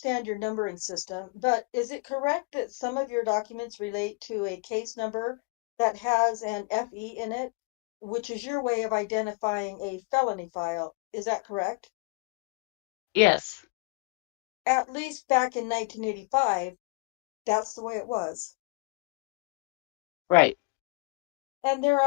your numbering system, but is it correct that some of your documents relate to a case number that has an FE in it, which is your way of identifying a felony file? Is that correct? Yes, At least back in 1985, that's the way it was. right. And there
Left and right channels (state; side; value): quieter; right; 28.6 dB